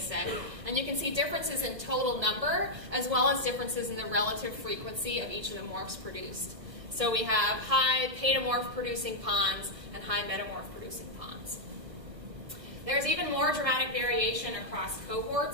And you can see differences in total number, as well as differences in the relative frequency of each of the morphs produced. So we have high paedomorph producing ponds and high metamorph producing ponds. There's even more dramatic variation across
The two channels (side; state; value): left; late; 1.4 ms